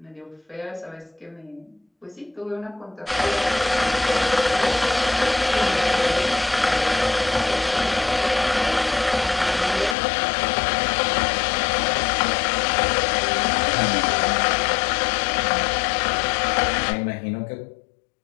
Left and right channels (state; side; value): drops out; right; at 10.0 s